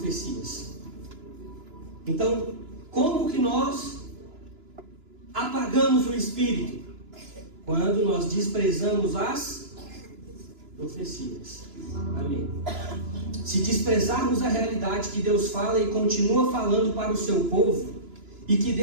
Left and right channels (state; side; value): late; left; 2.9 ms